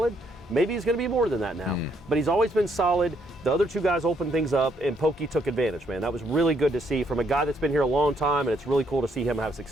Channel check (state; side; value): normal; both; correlation 0.72